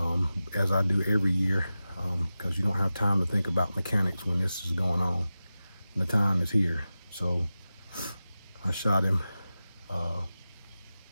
as I do every year, because you don't have time to think about mechanics when this is going on. And the time is here. So I shot him,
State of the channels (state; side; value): inverted; both; correlation -0.94